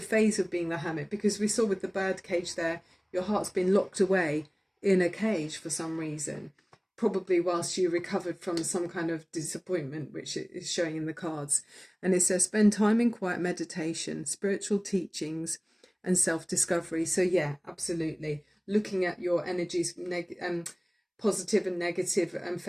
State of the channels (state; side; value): identical; both; correlation 1.00